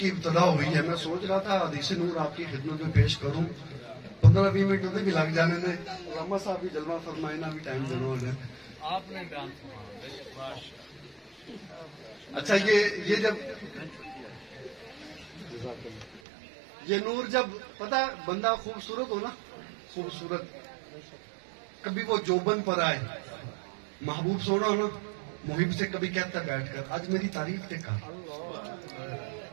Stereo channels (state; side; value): drops out; left; at 16.2 s